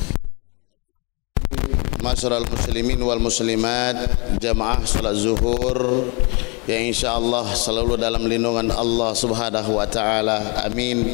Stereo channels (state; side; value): quieter; right; 31.5 dB